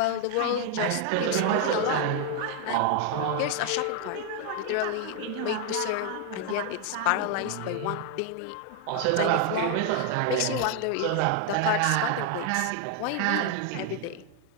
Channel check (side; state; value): both; different; correlation 0.00